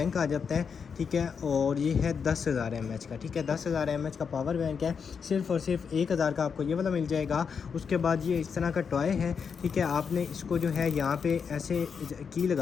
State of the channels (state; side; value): quieter; right; 6.3 dB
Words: आ जाता है, ठीक है, और ये है 10,000 mAh का, ठीक है, 10,000 mAh का पावर बैंक है, सिर्फ और सिर्फ 1,000 का आपको ये वाला मिल जाएगा। उसके बाद ये इस तरह का टॉय है, ठीक है, आपने इसको जो है यहाँ पे ऐसे की